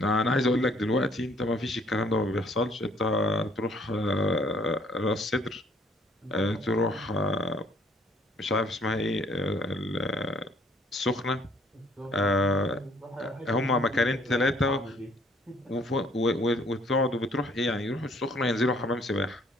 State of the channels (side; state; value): both; normal; correlation 0.61